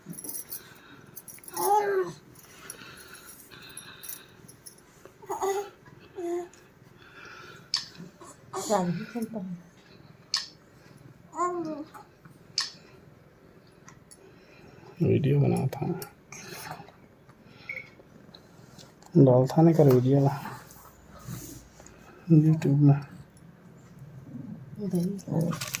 वीडियो बना था डाल था नहीं कर वीडियो ना यूट्यूब में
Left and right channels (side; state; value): both; identical; correlation 1.00